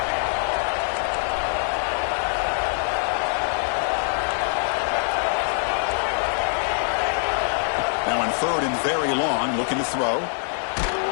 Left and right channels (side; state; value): right; silent; digital silence